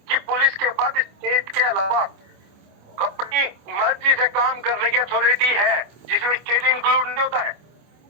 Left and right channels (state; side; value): late; left; 25 ms